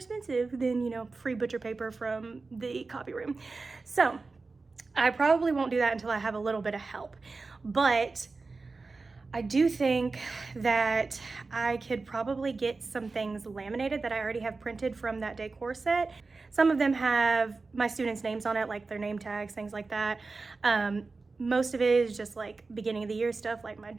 than, you know, free butcher paper from the copy room. So I probably won't do that until I have a little bit of help. But I do think that I could probably get some things laminated that I already have printed from that decor set. Some of them have my students' names on it, like their name tags, things like that. Most of it is just like beginning of the year stuff, like my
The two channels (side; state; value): left; quieter; 3.9 dB